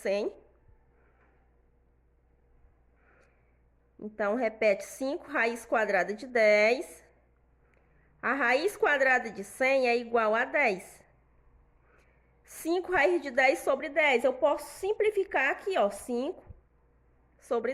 Então, repete 5 raiz quadrada de 10. A raiz quadrada de 100 é igual a 10. 5 raiz de 10 sobre 10. Eu posso simplificar aqui, ó, 5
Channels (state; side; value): identical; both; correlation 1.00